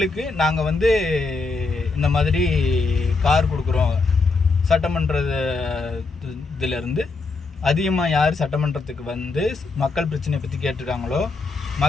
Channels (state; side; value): quieter; right; 3.8 dB